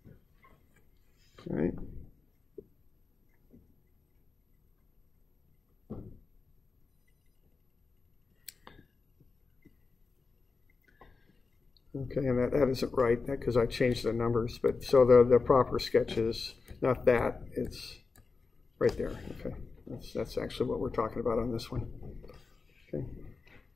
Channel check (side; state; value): right; quieter; 4.4 dB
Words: All right. Okay, and that isn't right because I changed the numbers, but so the proper sketch is not that, it's right there. Okay, that's actually what we're talking about on this one. Okay,